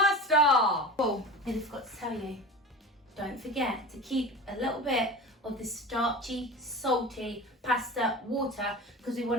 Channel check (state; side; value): normal; both; correlation 0.33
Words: Oh, I forgot to tell you, don't forget to keep a little bit of the starchy, salty pasta water because we